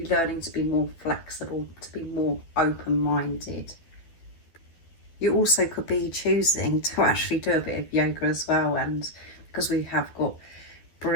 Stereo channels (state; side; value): late; right; 12 ms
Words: learning to be more flexible, to be more open-minded. You also could be choosing to actually do a bit of yoga as well, and because we have got